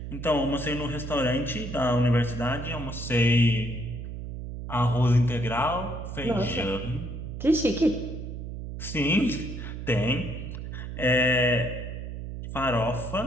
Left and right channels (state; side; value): noise; right; hum, 8 dB below the sound